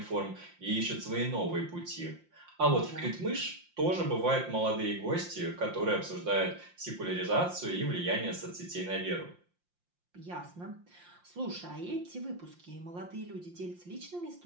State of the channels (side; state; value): left; late; 5.7 ms